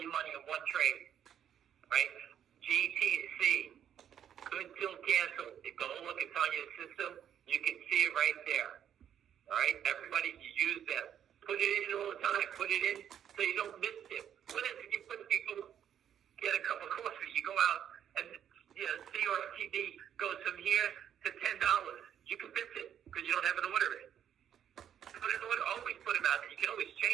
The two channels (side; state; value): left; quieter; 9.4 dB